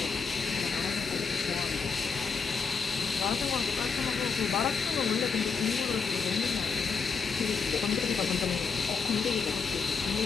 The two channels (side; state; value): right; quieter; 5.4 dB